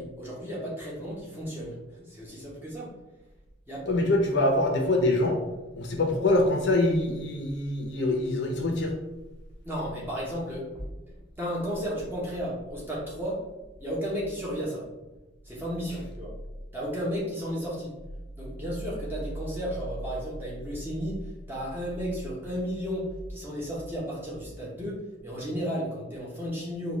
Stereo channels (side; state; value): both; normal; correlation 0.41